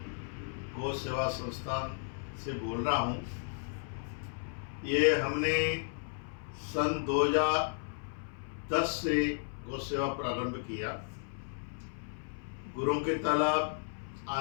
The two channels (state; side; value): silent; right; 55 dB below the other